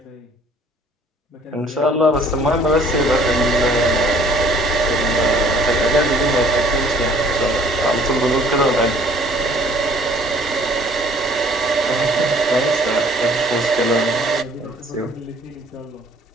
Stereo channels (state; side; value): normal; both; correlation 0.56